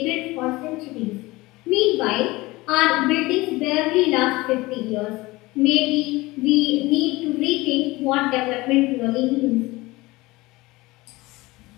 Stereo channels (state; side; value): quieter; right; 20.9 dB